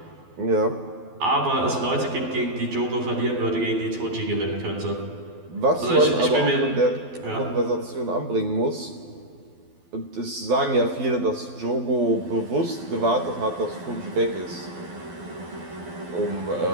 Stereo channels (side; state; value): left; late; 12 ms